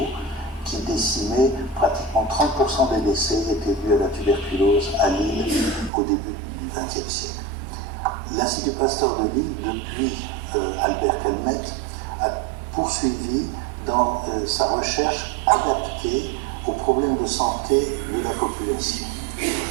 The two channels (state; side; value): drops out; left; at 5.9 s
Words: qui décimait pratiquement 30% des décès étaient dus à la tuberculose à Lille au début du XXe siècle. L'Institut Pasteur de Lille, depuis Albert Calmette, a poursuivi dans sa recherche adaptée aux problèmes de santé de la population.